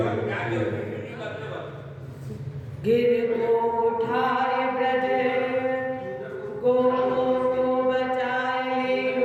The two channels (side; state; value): both; identical; correlation 1.00